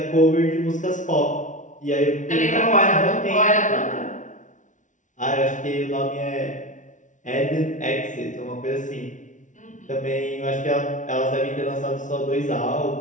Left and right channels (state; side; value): late; right; 0.37 ms